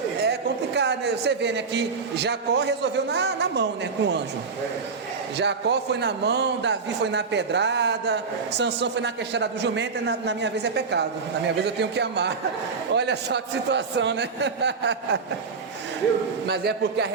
É complicado, né? Você vê, né, que Jacó resolveu na mão, né, com o anjo. Jacó foi na mão, Davi foi na pedrada, Sansão foi na queixada do jumento, e na minha vez é pecado. Na minha vez eu tenho que amar. Olha só que situação, né? Mas é porque a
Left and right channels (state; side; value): quieter; left; 5.0 dB